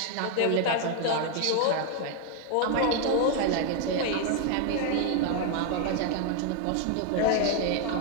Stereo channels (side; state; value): both; different; correlation 0.01